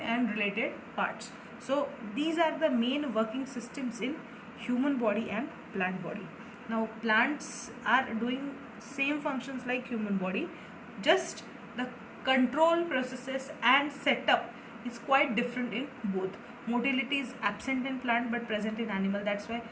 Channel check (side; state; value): both; identical; correlation 1.00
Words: related parts. So these are the main working systems in human body and plant body. Now plants are doing same functions like human body, just the control processes and setup is quite different in both. Motility is absent in plant but present in animal. That's why